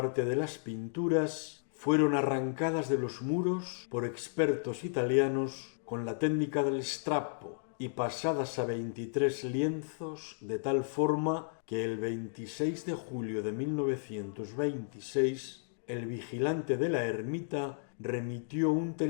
de las pinturas fueron arrancadas de los muros por expertos italianos con la técnica del strappo y pasadas a 23 lienzos de tal forma que el 26 de julio de 1926 el vigilante de la ermita remitió un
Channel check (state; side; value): silent; right; digital silence